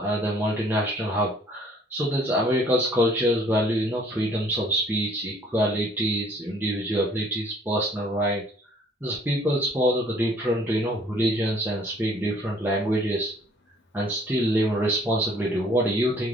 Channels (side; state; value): both; normal; correlation 0.58